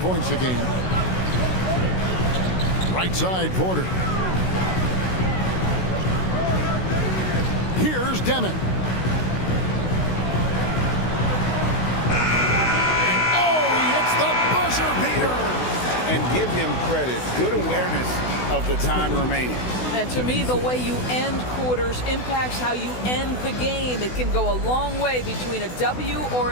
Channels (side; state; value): right; late; 16 ms